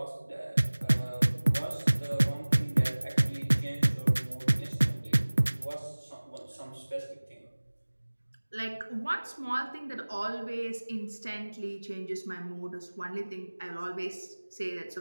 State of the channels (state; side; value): inverted; both; correlation -1.00